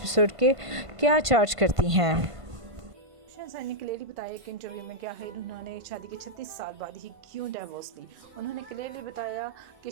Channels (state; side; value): late; left; 1.5 ms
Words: के क्या चार्ज करती हैं। बुशरा अंसारी ने क्लियरली बताया एक इंटरव्यू में क्या है उन्होंने शादी के 36 साल बाद ही क्यों डाइवोर्स ली। उन्होंने क्लियरली बताया कि